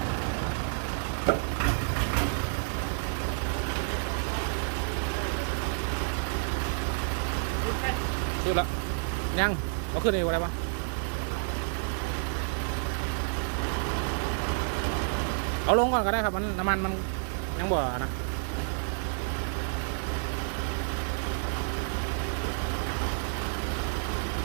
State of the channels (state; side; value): silent; left; 58 dB below the other